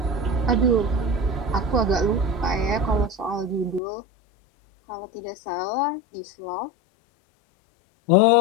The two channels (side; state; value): right; drops out; at 3.8 s